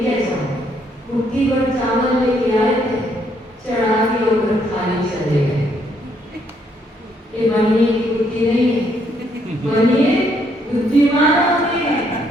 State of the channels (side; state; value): both; normal; correlation 0.71